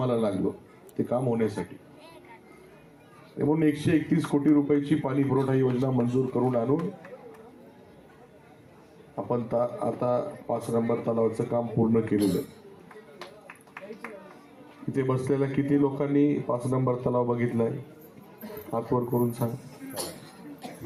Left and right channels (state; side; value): identical; both; correlation 1.00